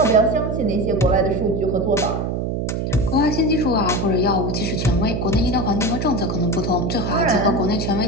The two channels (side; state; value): right; noise; hum, 2 dB below the sound